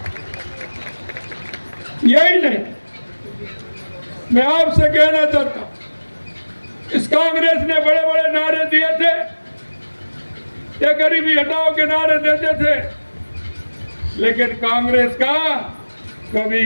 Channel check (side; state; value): both; inverted; correlation -1.00